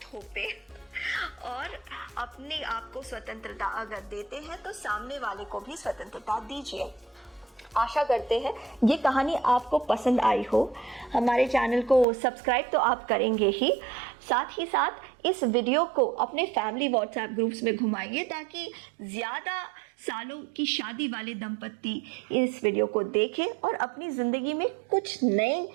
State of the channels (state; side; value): drops out; left; at 12.1 s